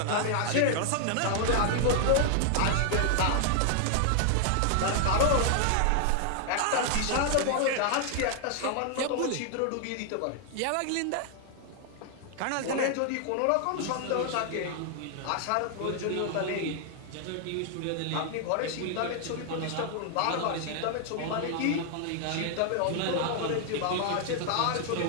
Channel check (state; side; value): different; both; correlation 0.00